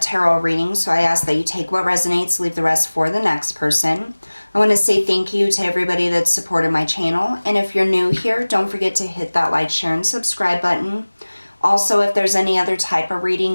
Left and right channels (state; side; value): inverted; both; correlation -1.00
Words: reading, so I ask that you take what resonates, leave the rest for the next person. I want to say thank you to everybody that's supported my channel, and if you're new here, don't forget to hit that like, share, and subscribe button. Also, if there's any other type of reading